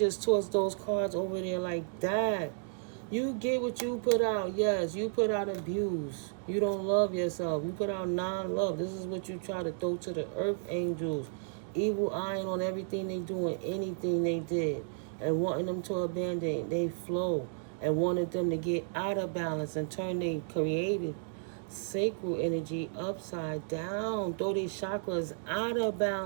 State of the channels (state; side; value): silent; left; digital silence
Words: tossed those cards over there like that. You get what you put out. Yes, you put out abuse. You don't love yourself. You put out non-love. This is what you try to throw to the earth angels. Evil eyeing on everything they do and anything they did. And wanting them to abandon they flow. And wanted them to get out of balance and turn their creative sacral energy upside down. Throw these chakras out of